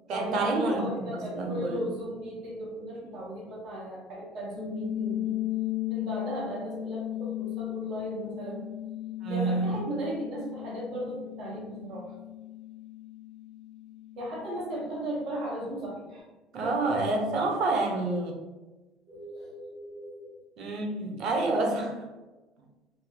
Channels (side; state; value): both; normal; correlation 0.43